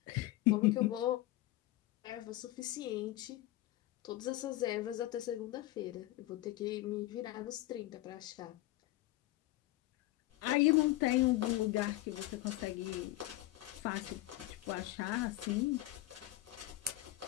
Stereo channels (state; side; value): quieter; right; 16.7 dB